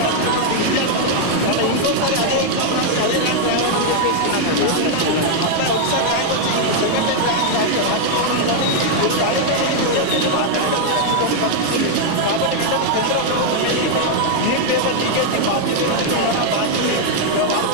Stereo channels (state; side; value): different; both; correlation 0.00